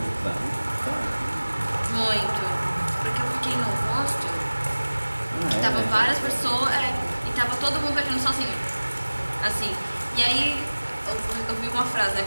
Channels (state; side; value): inverted; both; correlation -1.00